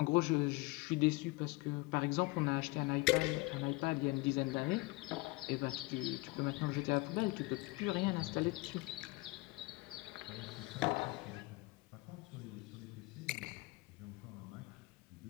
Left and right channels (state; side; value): quieter; right; 23.5 dB